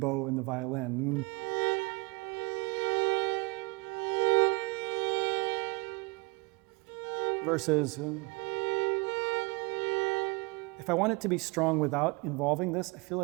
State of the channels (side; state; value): left; quieter; 27.5 dB